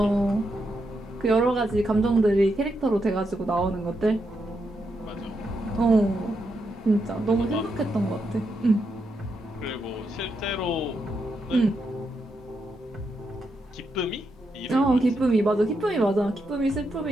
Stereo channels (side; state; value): both; normal; correlation 0.83